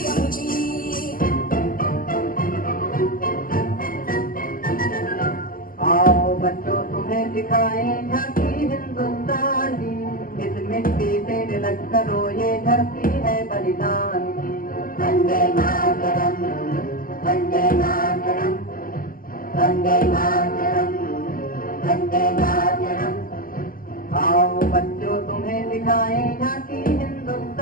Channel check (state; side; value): late; right; 0.41 ms